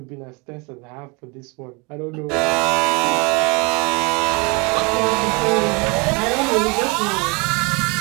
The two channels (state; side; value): quieter; left; 28.1 dB